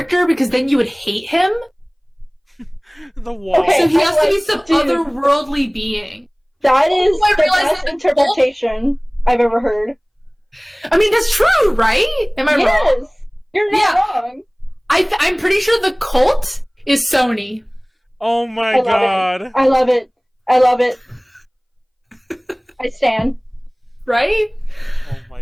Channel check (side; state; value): both; identical; correlation 1.00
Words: because then you would hate him. The wall. Okay, So he has to be some dude, otherworldly being. That is I the realized best that interpretation I've ever heard. I mean, that's true, right? Am I wrong? Yes! You're not Yeah. wrong. I'm pretty sure the cult is Sony. Oh my god. I love it. I love it. I stand. Right? Oh